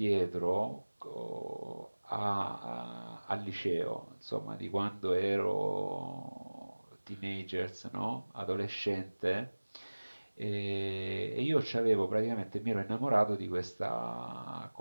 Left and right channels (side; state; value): both; inverted; correlation -1.00